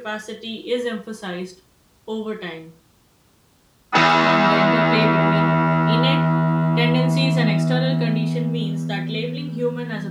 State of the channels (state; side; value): identical; both; correlation 1.00